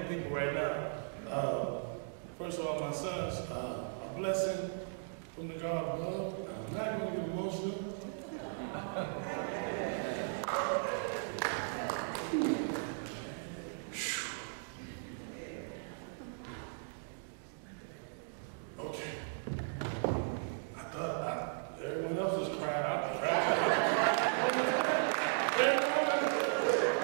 people right now. First of all, my sons, a blessing from the God above. I'm not going to get emotional. Okay. I thought everyone else was crying. I was crying.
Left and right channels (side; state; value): left; silent; digital silence